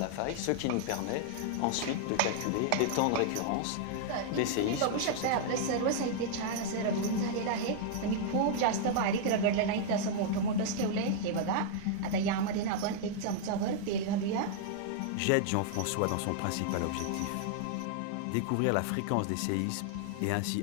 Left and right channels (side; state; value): both; different; correlation -0.01